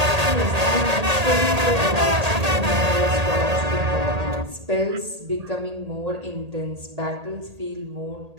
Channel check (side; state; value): left; late; 1.8 ms